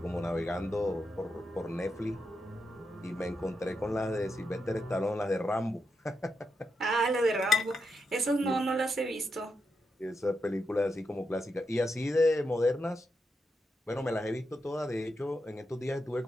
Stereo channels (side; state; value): both; normal; correlation 0.84